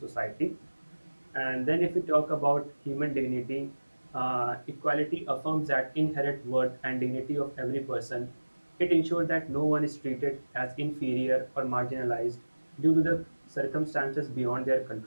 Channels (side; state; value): both; inverted; correlation -1.00